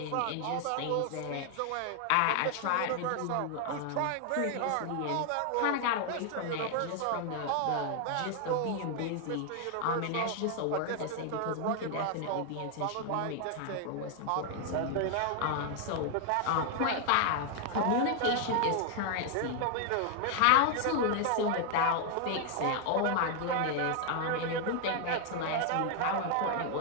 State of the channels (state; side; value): different; both; correlation 0.00